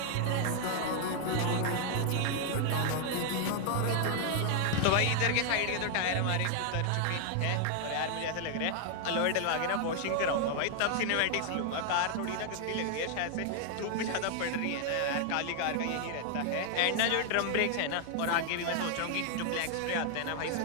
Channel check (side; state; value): both; different; correlation 0.00